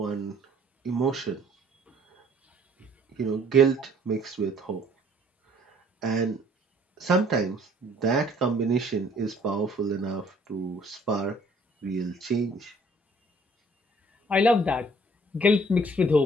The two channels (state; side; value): normal; both; correlation 0.59